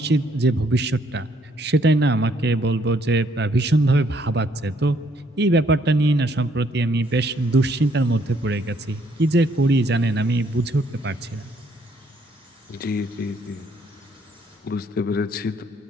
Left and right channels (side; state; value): both; normal; correlation 0.68